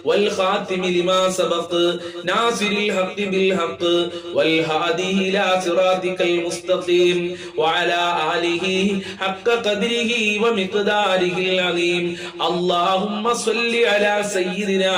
والخاتم لما سبق ناصر الحق بالحق والهادي إلى صراطك المستقيم وعلى آله حق قدره ومقداره العظيم. اللهم صل على سيدنا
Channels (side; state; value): both; identical; correlation 1.00